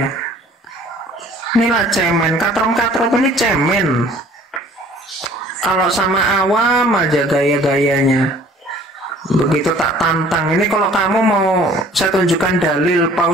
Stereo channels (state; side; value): normal; both; correlation 0.53